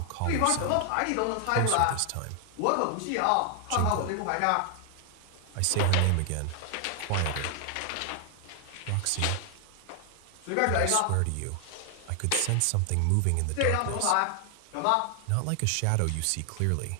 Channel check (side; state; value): both; different; correlation 0.00